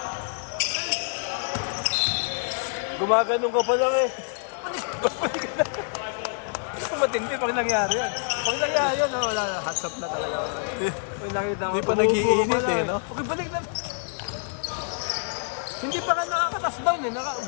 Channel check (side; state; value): right; silent; digital silence